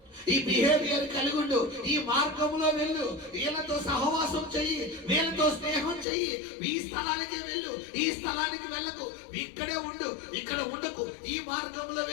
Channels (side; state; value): right; drops out; at 6.1 s